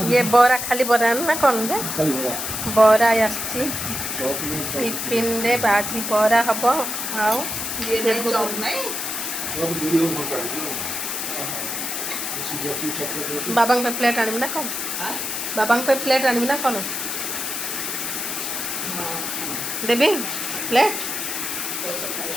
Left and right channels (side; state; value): left; noise; hiss, 3 dB below the sound